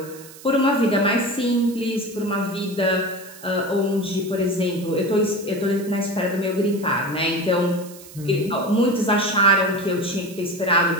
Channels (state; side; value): noise; right; hiss, 19 dB below the sound